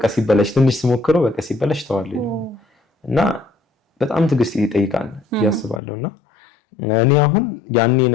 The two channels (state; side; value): drops out; right; at 5.8 s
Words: ሲበላሽ ትንሽ ስሞክረው በቃ ሲበላሽ ተዋለሁ። እና በጣም ትዕግስት ይጠይቃል ያስባለሁ። እና እኔ አሁን ያኔ